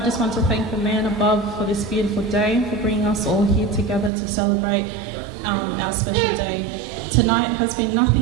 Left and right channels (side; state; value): left; drops out; at 4.1 s